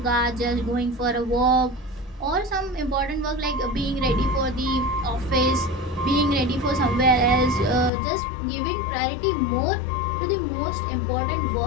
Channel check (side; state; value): right; drops out; at 7.9 s